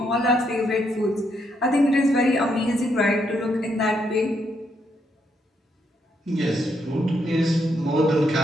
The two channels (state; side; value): normal; both; correlation 0.76